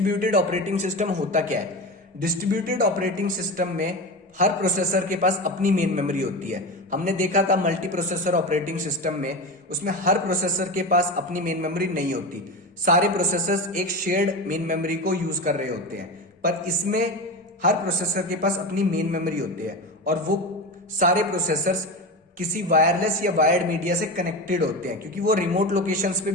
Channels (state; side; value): normal; both; correlation 0.24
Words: ऑपरेटिंग सिस्टम होता क्या है? डिस्ट्रीब्यूटेड ऑपरेटिंग सिस्टम में हर प्रोसेसर के पास अपनी मेन मेमोरी होती है। हमने देखा था मल्टी प्रोसेसर ऑपरेटिंग सिस्टम में, उसमें हर प्रोसेसर के पास अपनी मेन मेमोरी नहीं होती। सारे प्रोसेसर्स एक शेयर्ड मेन मेमोरी को यूज कर रहे होते हैं, पर इसमें हर प्रोसेसर के पास अपनी मेन मेमोरी होती है और वो सारे प्रोसेसर्स किसी वायरलेस या वायर्ड मीडिया से कनेक्टेड होते हैं, क्योंकि वो रिमोट लोकेशंस पे